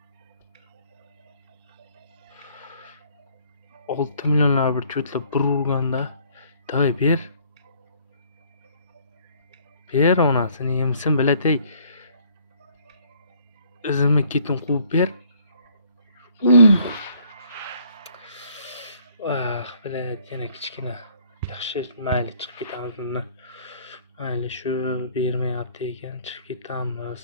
6 millionlar bir cho'tlab bir urganda, davay ber. Ber onasini yemsin bilatay. Izimni ketin quvib ber. Bilat yana kichkina. Yaxshi, mayli chiqib ketamiz bundan. Mayli shu bermayapti ekan, chiqib ketamiz.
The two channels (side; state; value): both; inverted; correlation -0.61